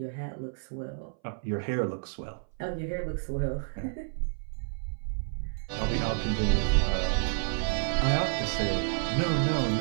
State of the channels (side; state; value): left; silent; 58 dB below the other